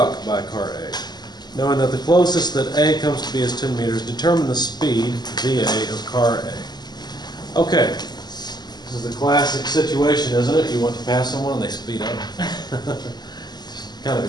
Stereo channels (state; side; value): late; right; 0.20 ms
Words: by car A. Knowing that the closest that A comes to B is 10 meters, determine the speed VA of car A. Okay, this is the classic situation, isn't it? You want to pass someone and they speed up. Kind of